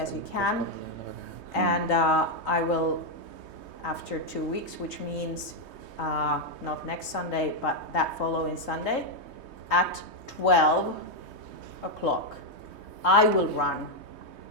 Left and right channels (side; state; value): left; late; 3.2 ms